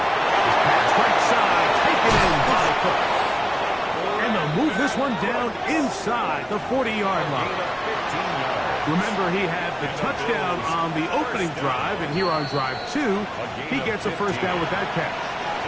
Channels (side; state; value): both; identical; correlation 1.00